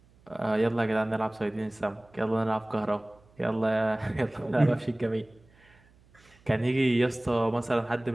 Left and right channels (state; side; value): noise; right; hum, 30 dB below the sound